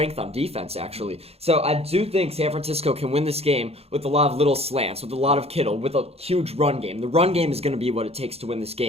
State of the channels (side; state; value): left; late; 0.29 ms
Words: on defense, actually. So I do think San Francisco can win this game with a lot of little slants, with a lot of Kittle, with a huge run game. The run game is going to be what it takes to win this